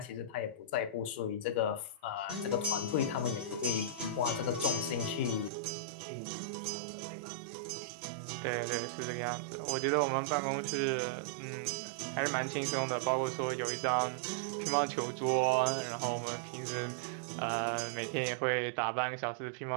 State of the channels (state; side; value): drops out; left; at 5.5 s